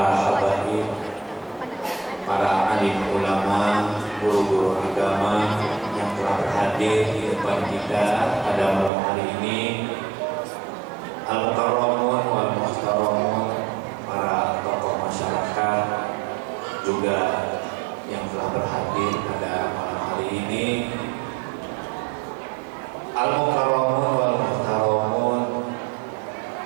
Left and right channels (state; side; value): drops out; left; at 8.9 s